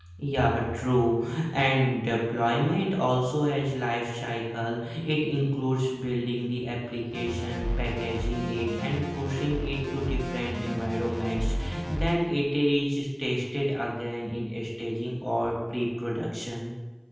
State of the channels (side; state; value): both; identical; correlation 1.00